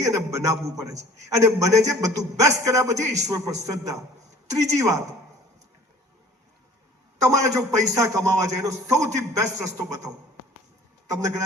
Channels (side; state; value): both; normal; correlation 0.50